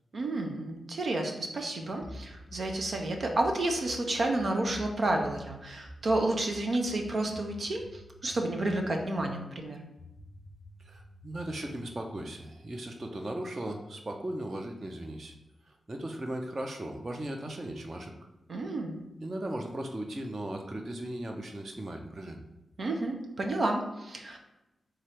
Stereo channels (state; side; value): normal; both; correlation 0.90